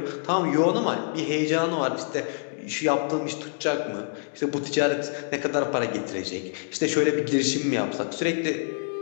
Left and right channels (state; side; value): silent; right; digital silence